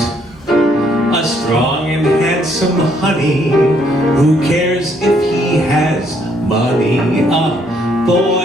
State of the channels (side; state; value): both; normal; correlation 0.69